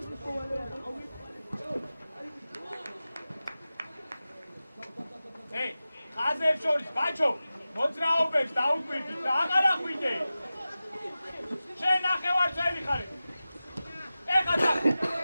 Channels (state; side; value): inverted; both; correlation -0.95